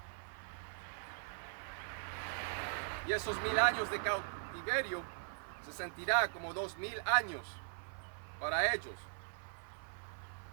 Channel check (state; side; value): silent; left; 51 dB below the other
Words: Y esos 1000 años de cautiverio se sentirá como 2000 años para ellos.